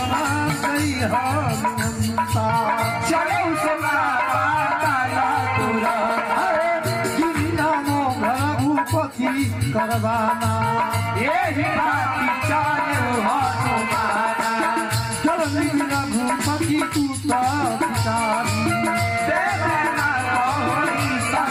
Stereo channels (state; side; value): identical; both; correlation 1.00